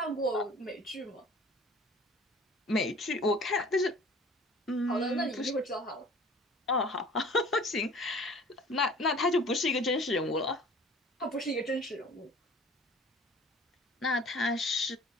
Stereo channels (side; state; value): both; normal; correlation 0.47